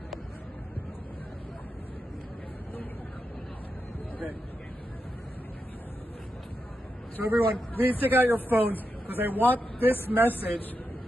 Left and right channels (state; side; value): normal; both; correlation 0.86